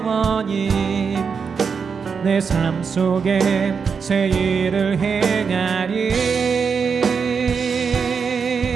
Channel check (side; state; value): left; quieter; 5.9 dB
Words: 내 삶 속에 새 일을 행하리.